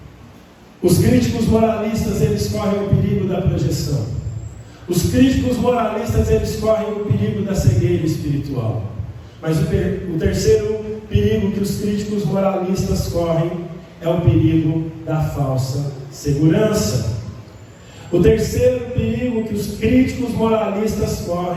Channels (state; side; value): identical; both; correlation 1.00